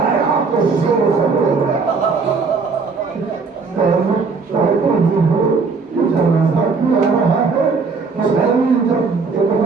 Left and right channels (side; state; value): left; quieter; 4.7 dB